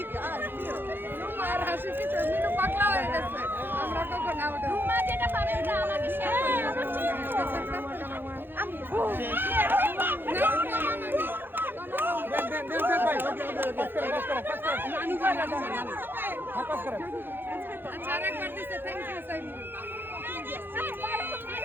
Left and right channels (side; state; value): left; late; 0.10 ms